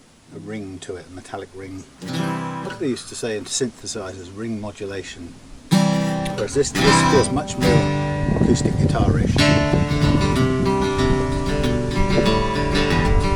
ring to it, a metallic ring. What they used to say in synthesizers, ring modulation. Whereas this feels much more acoustic guitar-ish.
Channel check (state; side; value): identical; both; correlation 1.00